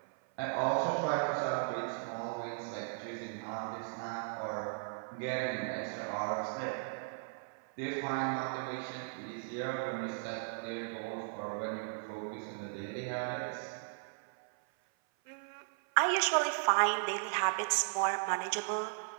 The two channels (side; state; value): left; silent; 53 dB below the other